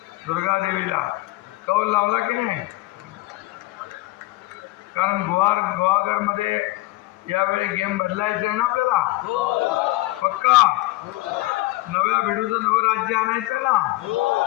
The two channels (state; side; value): quieter; right; 19.5 dB